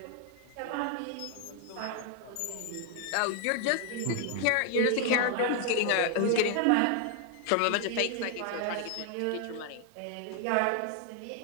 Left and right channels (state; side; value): different; both; correlation 0.00